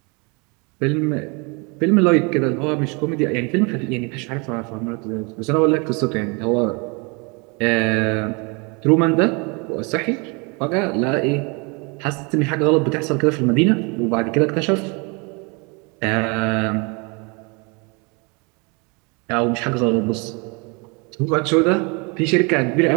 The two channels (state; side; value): quieter; left; 30.9 dB